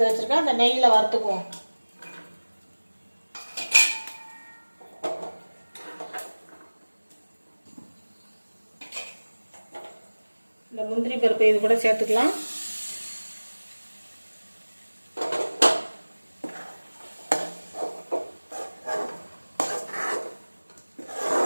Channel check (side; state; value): both; inverted; correlation -1.00